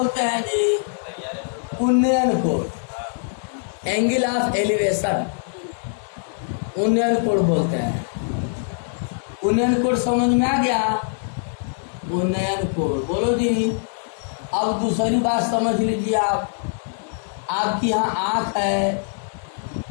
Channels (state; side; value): silent; right; digital silence